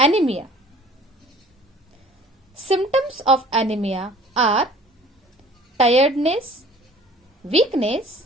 Symptoms of anemia are tiredness,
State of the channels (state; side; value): normal; both; correlation 0.50